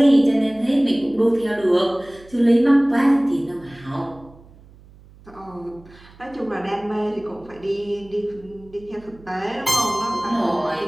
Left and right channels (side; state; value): right; noise; hum, 24 dB below the sound